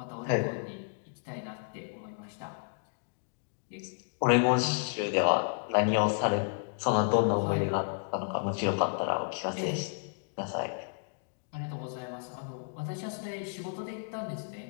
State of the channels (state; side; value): silent; right; digital silence